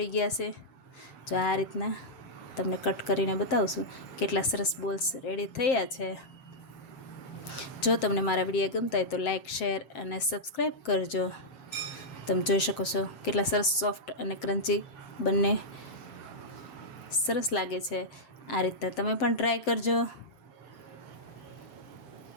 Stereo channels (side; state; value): right; late; 7.6 ms